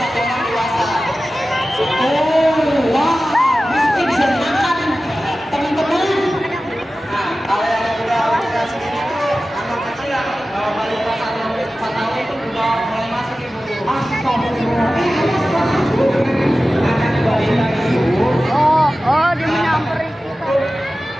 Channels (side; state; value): both; normal; correlation 0.95